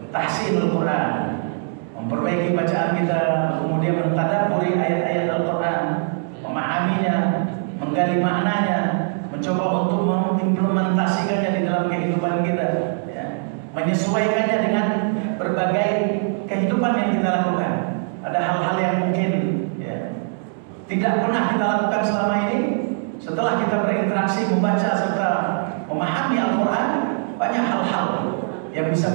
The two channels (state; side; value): silent; left; digital silence